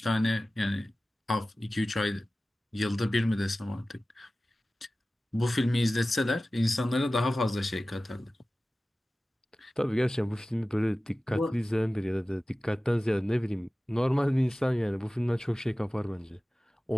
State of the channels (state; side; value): normal; both; correlation 0.96